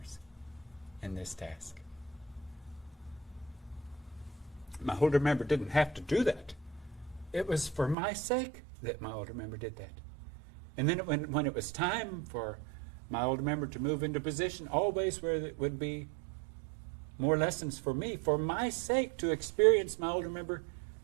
in this task. My older member didn't have to do that. It was for my sake that my older member did that. And then when it was time for my older member to move into position, always where it would be more lessons for me, for my sake, to experience my older member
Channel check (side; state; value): left; drops out; at 8.0 s